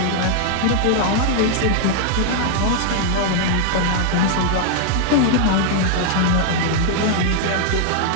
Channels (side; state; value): both; different; correlation 0.00